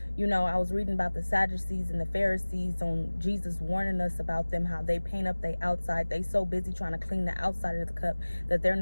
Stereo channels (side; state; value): both; inverted; correlation -1.00